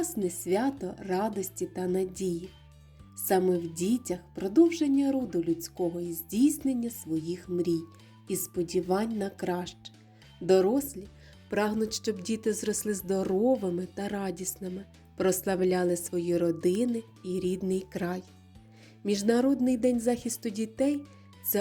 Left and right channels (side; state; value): both; identical; correlation 1.00